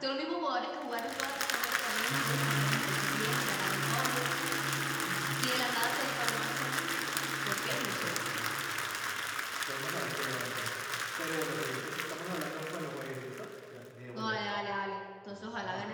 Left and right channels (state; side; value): identical; both; correlation 1.00